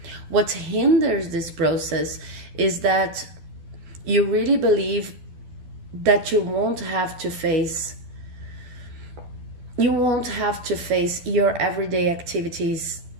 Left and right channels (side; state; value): left; late; 12 ms